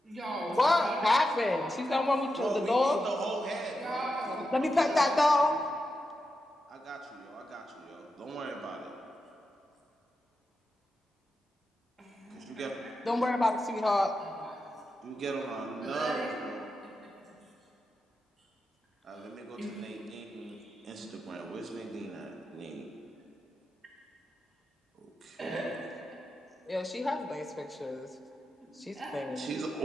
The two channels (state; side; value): normal; both; correlation 0.88